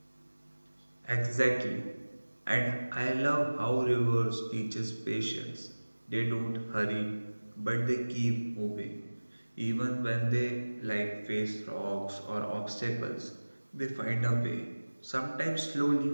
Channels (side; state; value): both; inverted; correlation -1.00